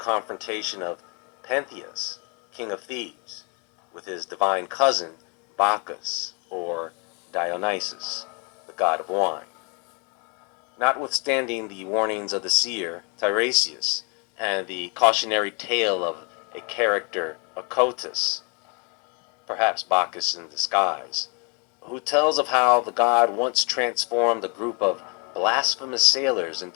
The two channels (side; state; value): right; quieter; 34.5 dB